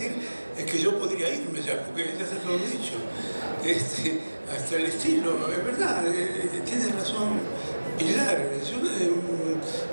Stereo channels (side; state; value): both; inverted; correlation -1.00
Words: es que yo podría irme ya, porque ya se lo he dicho. Hasta el estilo, es verdad, tiene razón Pilar. Yo